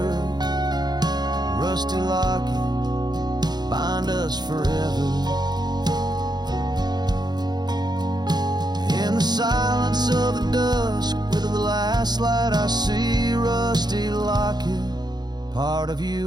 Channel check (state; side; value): late; left; 0.20 ms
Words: rusty locket, bind us forever. In the silence of the dusk, with the last light I see, rusty locket, part of